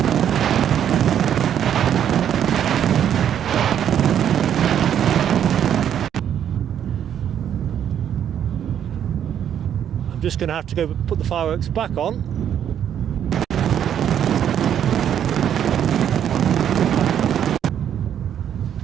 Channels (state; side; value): quieter; left; 9.5 dB